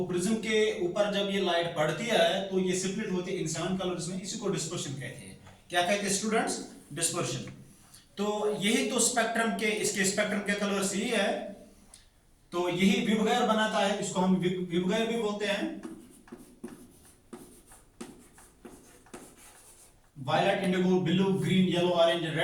प्रिज्म के ऊपर जब ये लाइट पड़ती है तो ये स्प्लिट होती है इन 7 कलर्स में। इसी को डिस्पर्शन कहते हैं। क्या कहते हैं स्टूडेंट्स? डिस्पर्शन। तो यही तो स्पेक्ट्रम के, इसके स्पेक्ट्रम के कलर्स यही है। तो यही विबगैर बनाता है, इसको हम विबगैर भी बोलते हैं। Violet, indigo, blue, green, yellow, orange,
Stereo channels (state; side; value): identical; both; correlation 1.00